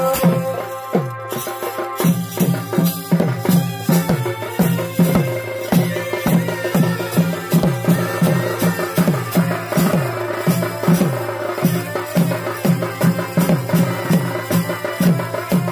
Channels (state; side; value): identical; both; correlation 1.00